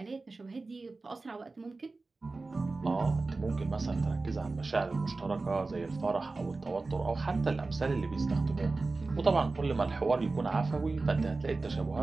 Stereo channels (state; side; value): quieter; left; 3.6 dB